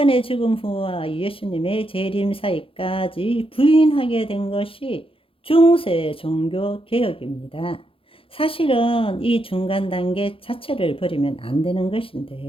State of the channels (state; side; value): late; right; 0.26 ms